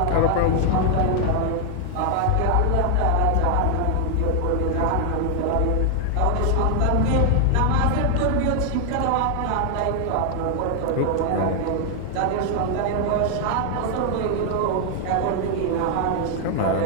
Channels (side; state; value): both; different; correlation 0.00